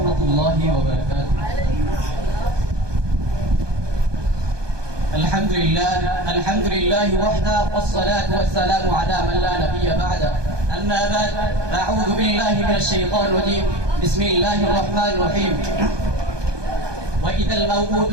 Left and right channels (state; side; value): late; left; 1.2 ms